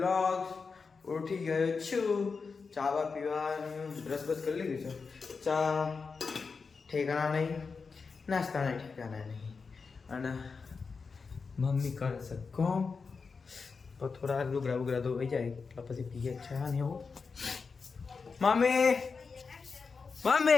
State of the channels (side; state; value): right; quieter; 4.9 dB